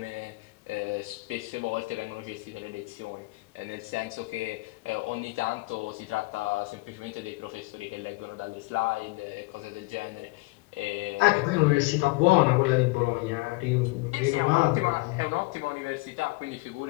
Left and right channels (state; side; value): quieter; right; 23.9 dB